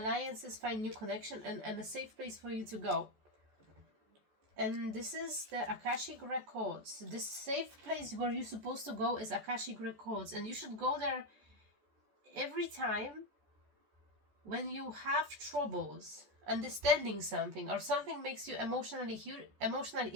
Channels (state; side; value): late; left; 14 ms